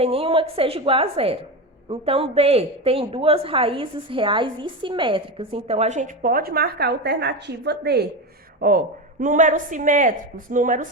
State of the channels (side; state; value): both; normal; correlation 0.19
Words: nenhuma que seja igual a 0. Então, D tem duas raízes reais e simétricas. Então, a gente pode marcar a alternativa D. Ó, números simétricos, números